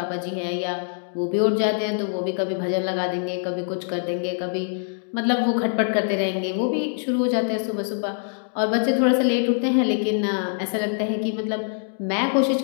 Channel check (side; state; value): right; silent; digital silence